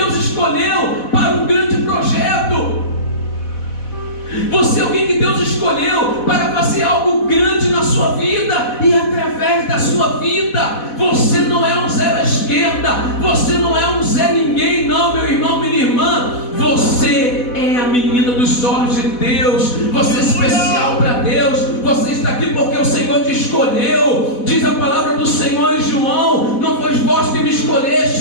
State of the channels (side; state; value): right; late; 4.1 ms